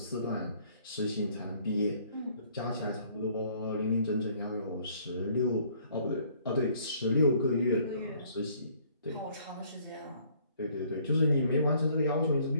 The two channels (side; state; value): both; inverted; correlation -0.61